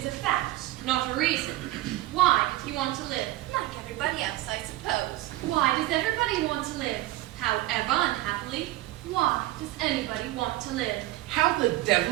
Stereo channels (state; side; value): quieter; left; 16.8 dB